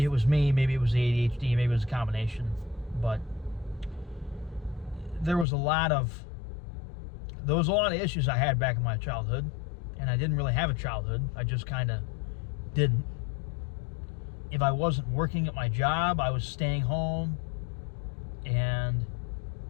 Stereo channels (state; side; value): drops out; right; at 5.5 s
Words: it was me, maybe it was the ADHD, maybe it was a combination. But there was a lot of issues I had back in my childhood, and I didn't really have a childhood. I just kind of didn't. If I wasn't working at my job, I was staying home, and